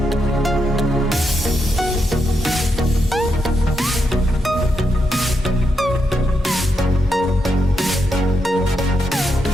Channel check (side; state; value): both; normal; correlation 0.83